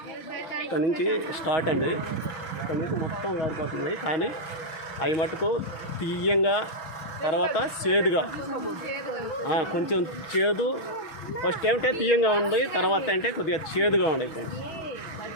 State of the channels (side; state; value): right; late; 6.3 ms